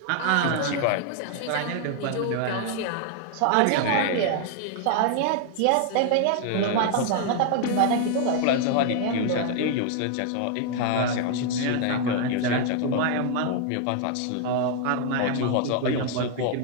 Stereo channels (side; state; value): both; different; correlation 0.00